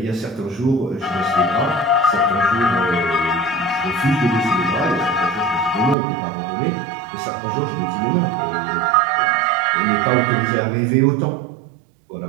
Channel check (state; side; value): drops out; left; at 6.0 s